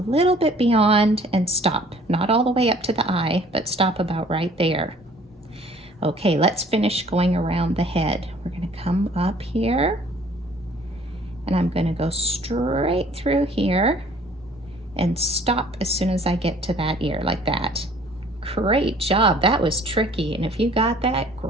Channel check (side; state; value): both; normal; correlation 0.54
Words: little bit beyond and stop. Not all the way up to the eye, but stop about right there. Okay, let's finish going around the head. We're going to come up here, and I'm going to go straight through here and stop as soon as I get to that ear, like that. Great job. That was tricky, and if you got that,